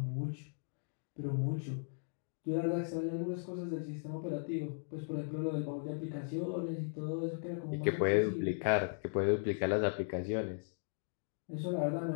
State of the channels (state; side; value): silent; right; digital silence